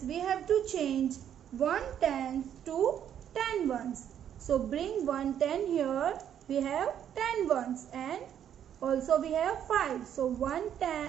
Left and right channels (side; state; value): left; quieter; 9.6 dB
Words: we have to change 1 tens to 10 ones. So bring 1 10 here. We have 10 ones and also we have 5. So 1